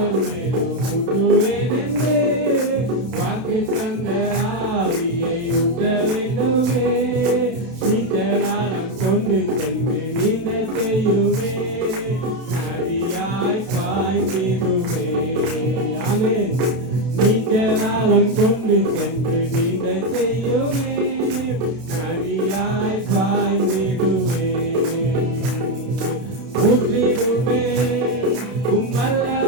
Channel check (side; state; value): left; late; 31 ms